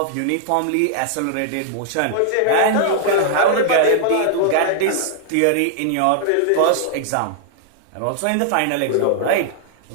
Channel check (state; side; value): different; both; correlation -0.01